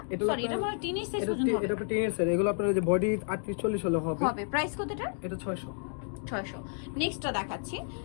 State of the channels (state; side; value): silent; right; 56 dB below the other